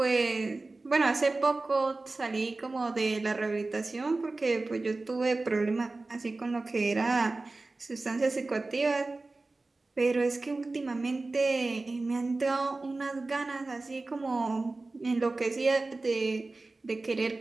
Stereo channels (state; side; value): quieter; left; 3.3 dB